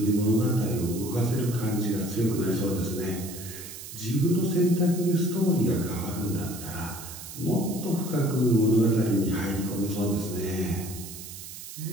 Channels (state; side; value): noise; right; hiss, 12 dB below the sound